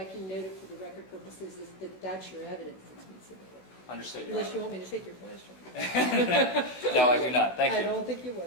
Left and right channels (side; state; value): right; late; 16 ms